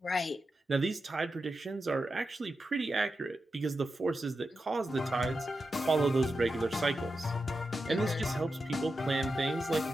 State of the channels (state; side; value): normal; both; correlation 0.89